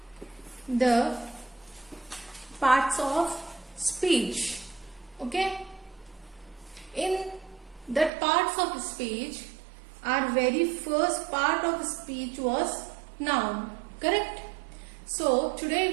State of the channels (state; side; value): drops out; left; at 8.1 s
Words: the parts of speech. Okay? In that parts of speech, our very first part of speech was noun, correct? So today